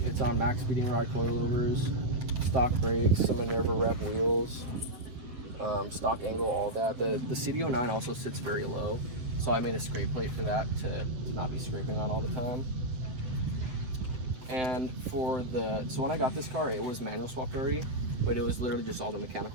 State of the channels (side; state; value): left; late; 7.8 ms